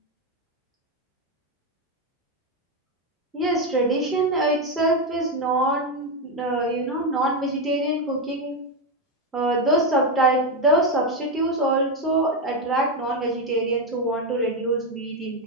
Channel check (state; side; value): normal; both; correlation 0.08